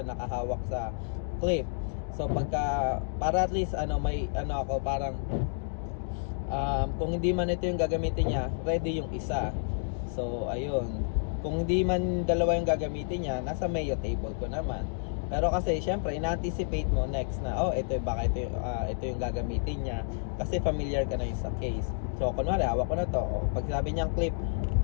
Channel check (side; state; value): right; silent; digital silence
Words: nakahawak sa clip. So pagka, para at least may ako parang kung hindi man ito yung gagamitin niya, ready yung isa. So ayun, kung hindi man dalawa yung gagamitin niya, nasa Mayo table ko naman. Pero kasi syempre ina-anticipate mo next na ito yung gagamitin niya, kasi familiar ka na yung sa case. So kunwari hawak ko na to, pag sabi niyang clip,